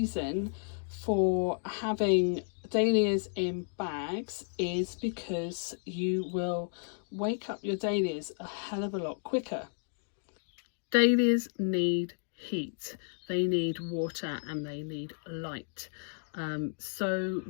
for having dahlias in bags is because you will wake up your dahlias a hell of a lot quicker. Dahlias need heat, they need water, and they need light. So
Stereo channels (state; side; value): silent; right; digital silence